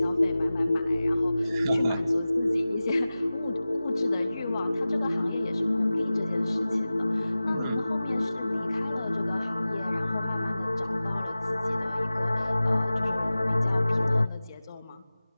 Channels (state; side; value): inverted; both; correlation -0.97